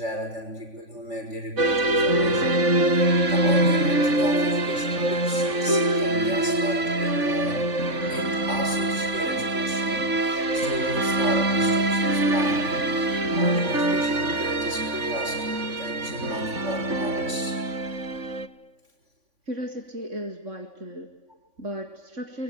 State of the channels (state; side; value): late; left; 3.5 ms